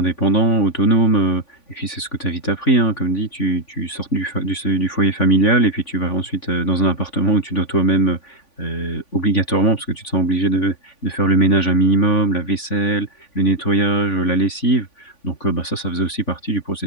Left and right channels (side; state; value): right; late; 3.5 ms